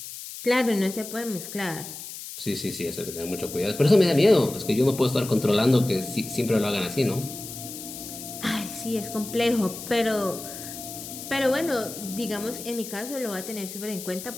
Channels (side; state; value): left; noise; hiss, 11 dB below the sound